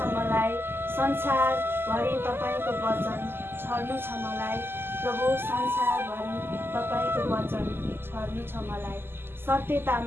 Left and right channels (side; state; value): left; late; 0.11 ms